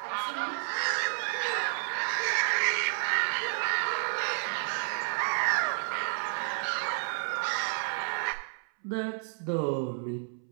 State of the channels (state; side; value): silent; left; 57 dB below the other